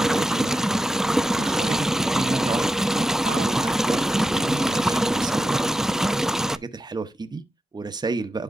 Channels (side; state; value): both; normal; correlation 0.90